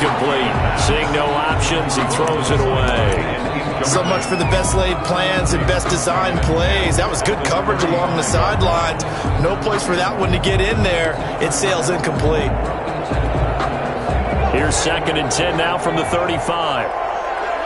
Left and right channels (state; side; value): identical; both; correlation 1.00